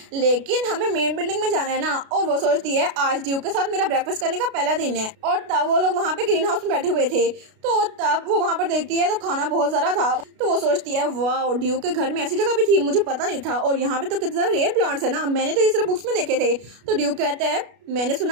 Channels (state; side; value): late; left; 33 ms